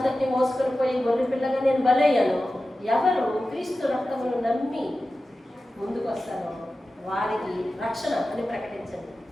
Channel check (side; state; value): both; normal; correlation 0.94